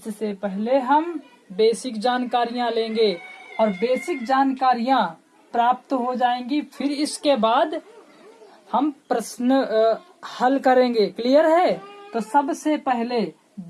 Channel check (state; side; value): identical; both; correlation 1.00